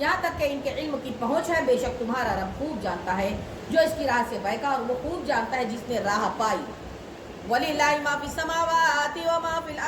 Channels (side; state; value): both; identical; correlation 1.00